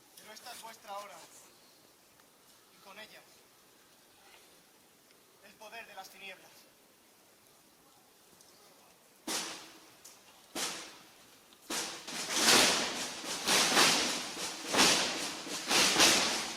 Pero esta es vuestra hora. Y con ella, el poder de las tinieblas.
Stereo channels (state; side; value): identical; both; correlation 1.00